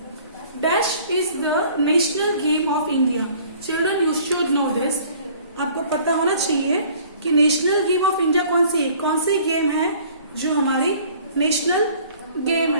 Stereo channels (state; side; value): inverted; both; correlation -0.53